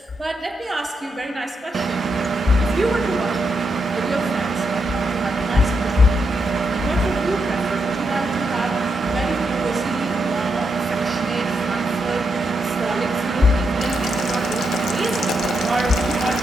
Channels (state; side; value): normal; both; correlation 0.82